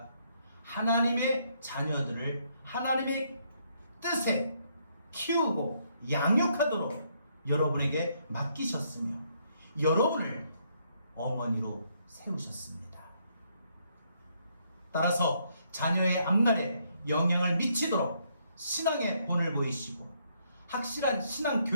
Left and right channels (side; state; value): both; inverted; correlation -0.72